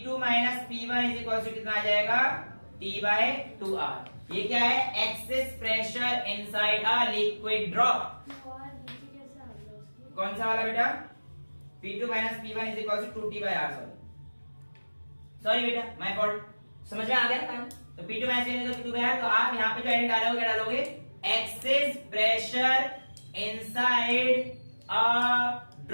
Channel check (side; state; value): both; inverted; correlation -1.00